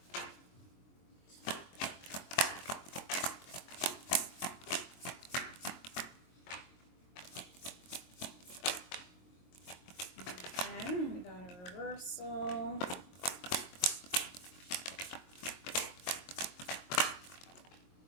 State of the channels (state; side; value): late; right; 22 ms